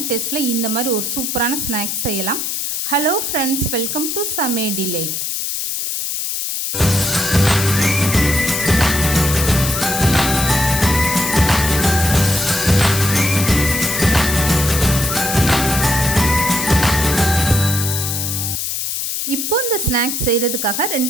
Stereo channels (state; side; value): noise; left; hiss, 2 dB below the sound